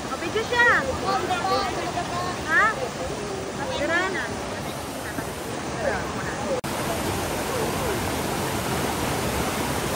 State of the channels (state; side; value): identical; both; correlation 1.00